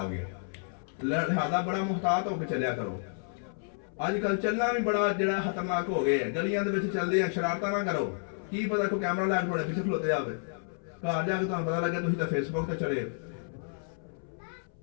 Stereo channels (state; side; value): silent; right; 57 dB below the other